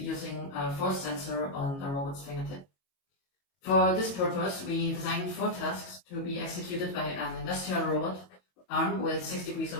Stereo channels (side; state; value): right; late; 22 ms